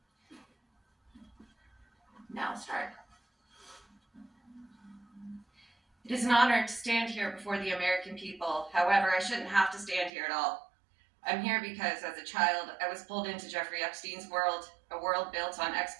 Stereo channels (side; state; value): left; drops out; at 10.1 s